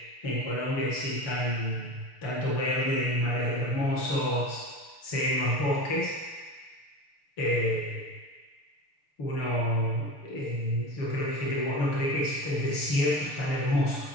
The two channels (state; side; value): late; right; 6.7 ms